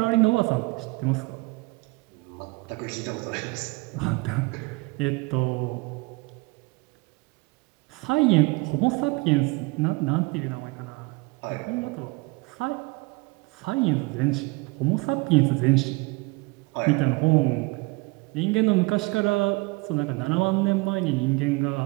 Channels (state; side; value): quieter; left; 25.7 dB